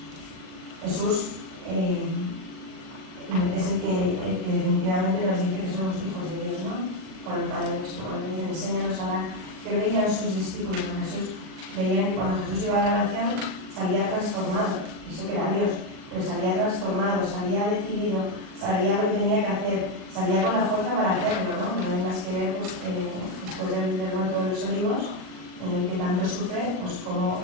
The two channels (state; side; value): late; left; 38 ms